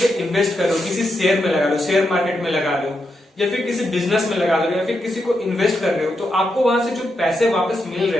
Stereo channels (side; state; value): both; normal; correlation 0.84